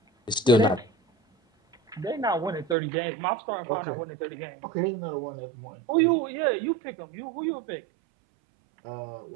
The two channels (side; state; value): left; drops out; at 2.8 s